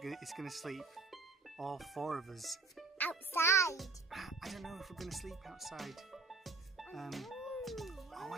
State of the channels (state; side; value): quieter; left; 4.1 dB